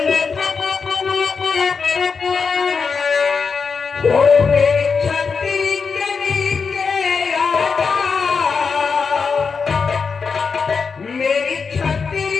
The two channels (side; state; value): right; quieter; 5.4 dB